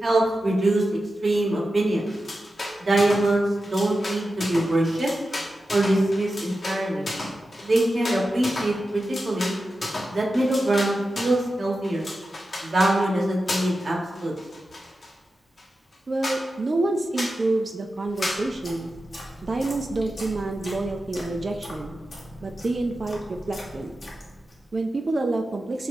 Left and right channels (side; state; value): both; normal; correlation 0.91